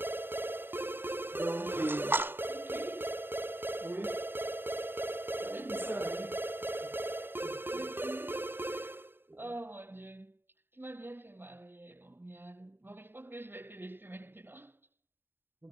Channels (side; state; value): left; late; 0.10 ms